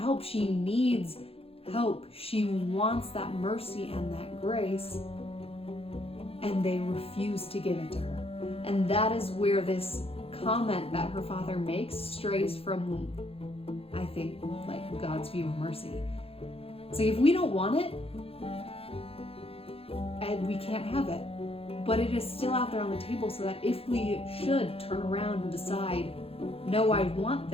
she needs help, she wants that mercy and that grace, and they refuse to give it to her. And that is where this comment that her father makes strays from, I think, like God's view of mercy. So if we don't want it, and we can't have it, but it is still out there on the table, so that if we should turn around and decide, no, I want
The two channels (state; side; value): late; right; 0.28 ms